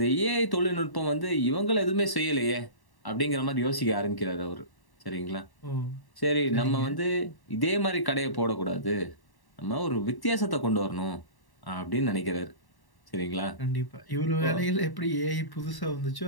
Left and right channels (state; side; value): late; right; 1.1 ms